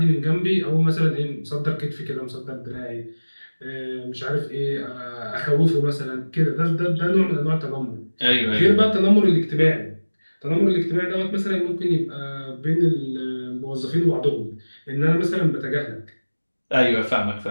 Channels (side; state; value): both; inverted; correlation -1.00